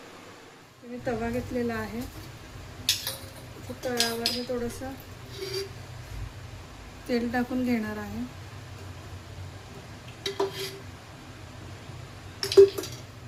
मी तवा घेतलेला आहे, तव्यावर मी थोडंसं तेल टाकून घेणार आहे।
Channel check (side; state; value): both; identical; correlation 1.00